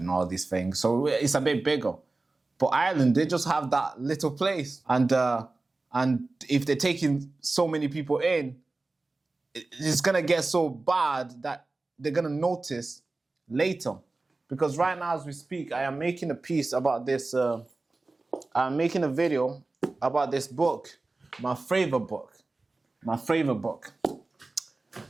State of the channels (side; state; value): left; quieter; 3.3 dB